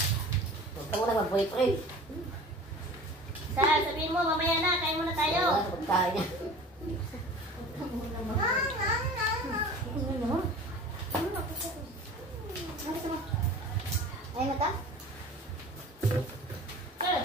tayo niya. Ayaw mo ta?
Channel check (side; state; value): both; normal; correlation 0.41